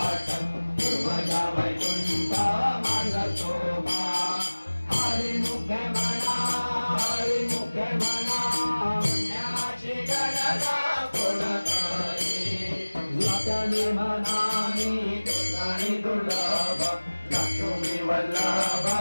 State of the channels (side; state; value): both; inverted; correlation -1.00